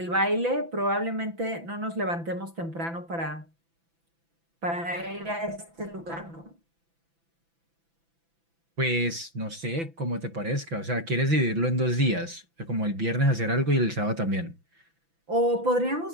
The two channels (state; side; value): late; left; 6.0 ms